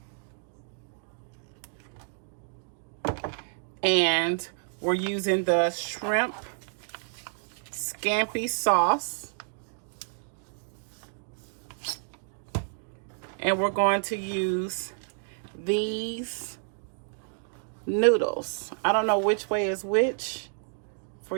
And we're using the shrimp scampi sauce. And we're going to use these noodles. I don't know which way is which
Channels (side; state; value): left; silent; digital silence